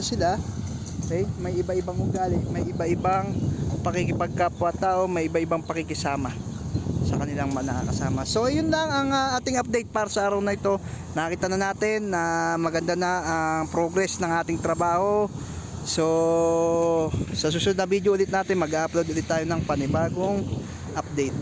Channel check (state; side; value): identical; both; correlation 1.00